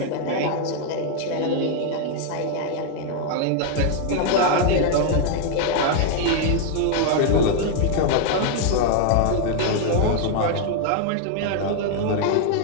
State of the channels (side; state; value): both; different; correlation 0.00